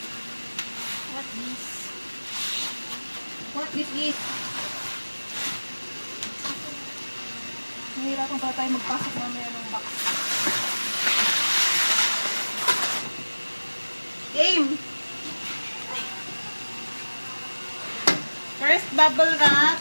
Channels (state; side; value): inverted; both; correlation -1.00